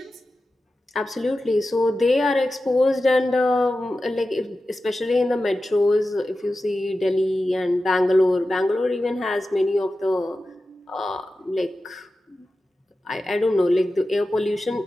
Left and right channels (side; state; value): both; normal; correlation 0.93